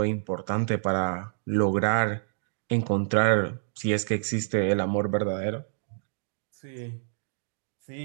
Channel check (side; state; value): left; silent; digital silence